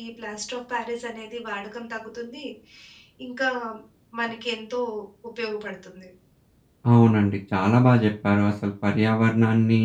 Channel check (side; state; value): both; identical; correlation 1.00